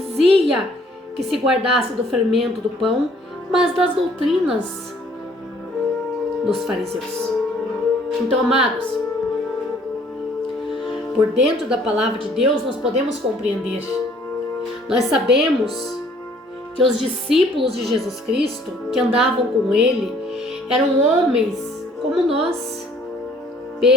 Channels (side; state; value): both; normal; correlation 0.59